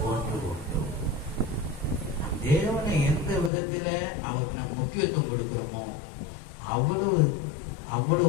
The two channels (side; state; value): right; drops out; at 3.5 s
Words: ஒன்று உண்டு. தேவனை எந்த விதத்துல அவருக்கு நாம் முக்கியத்துவம் கொடுக்கிறோமோ அவ்வளவு